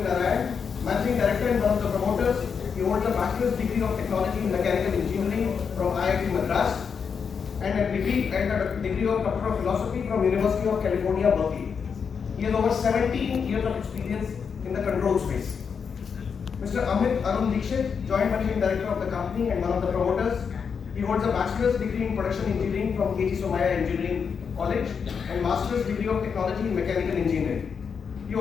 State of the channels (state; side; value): quieter; right; 6.3 dB